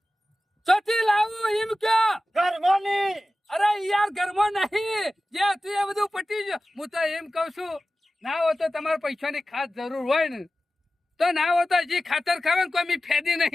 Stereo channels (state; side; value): normal; both; correlation 0.94